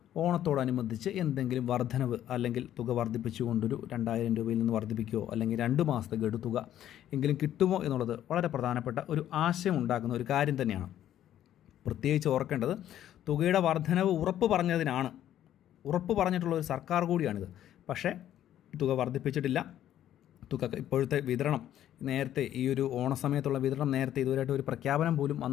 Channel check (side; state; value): right; quieter; 11.6 dB